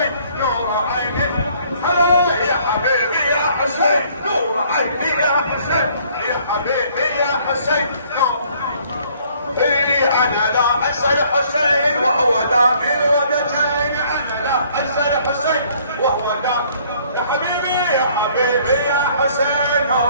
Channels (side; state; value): both; inverted; correlation -0.60